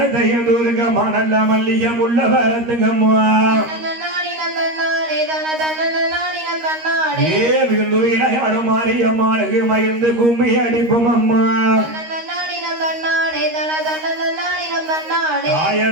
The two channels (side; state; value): left; late; 13 ms